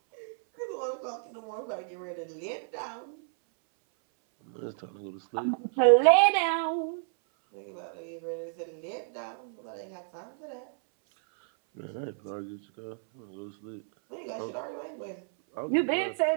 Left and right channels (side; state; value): left; silent; 57 dB below the other